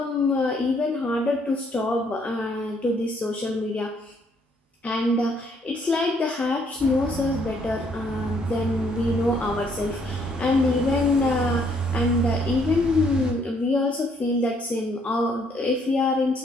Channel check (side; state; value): both; normal; correlation 0.68